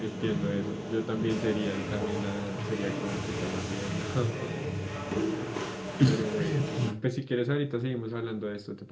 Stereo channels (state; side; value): identical; both; correlation 1.00